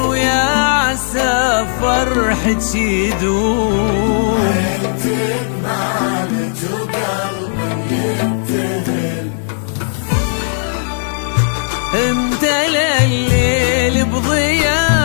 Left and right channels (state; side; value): silent; right; digital silence